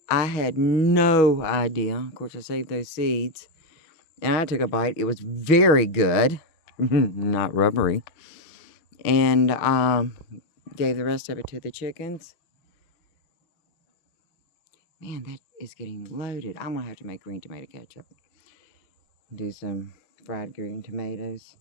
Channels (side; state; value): right; late; 6.2 ms